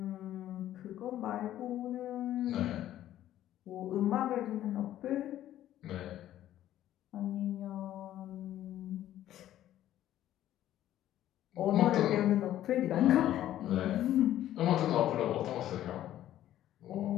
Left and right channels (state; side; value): quieter; right; 12.7 dB